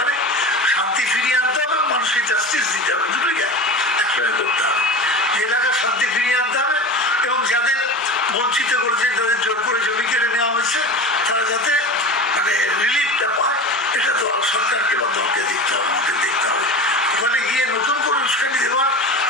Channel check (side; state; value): both; normal; correlation 0.30